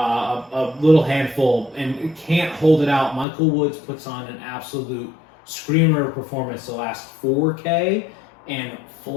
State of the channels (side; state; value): right; drops out; at 3.2 s